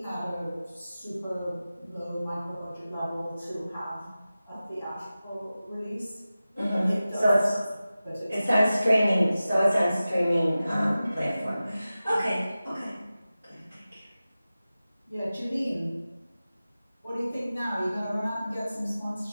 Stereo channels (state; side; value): inverted; both; correlation -0.95